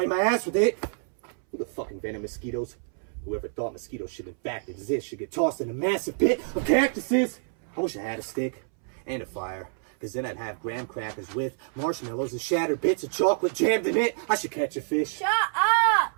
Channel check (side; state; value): left; silent; 60 dB below the other